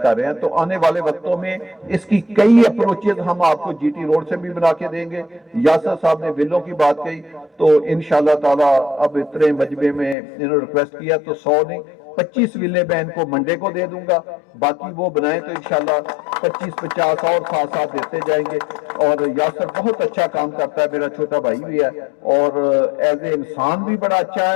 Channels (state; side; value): drops out; right; at 10.2 s